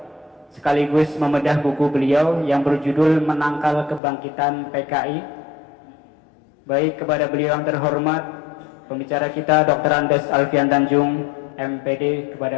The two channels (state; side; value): drops out; right; at 4.0 s